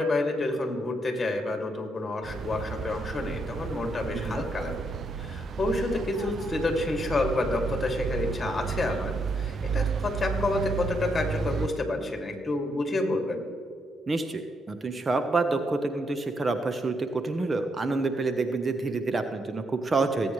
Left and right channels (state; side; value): normal; both; correlation 0.77